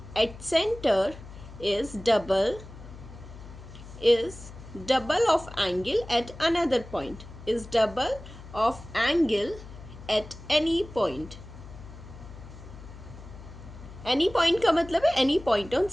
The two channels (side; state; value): left; noise; hum, 16 dB below the sound